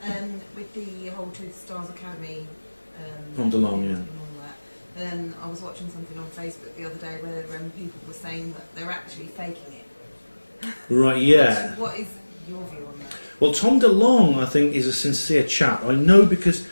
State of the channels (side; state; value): both; inverted; correlation -1.00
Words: With the whole To the Stars Academy From DeLong, yeah. and all that, I was watching something on Facebook the other day where people were saying that they're actually faking it. Right, yeah. What is your view on that? Well, Tom DeLong, I think, is a sincere chap. I know because